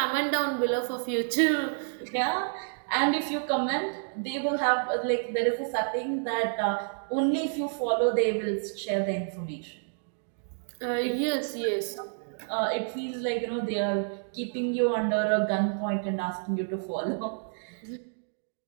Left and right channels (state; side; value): silent; left; digital silence